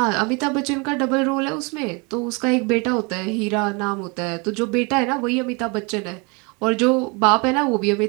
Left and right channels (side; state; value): left; quieter; 30.4 dB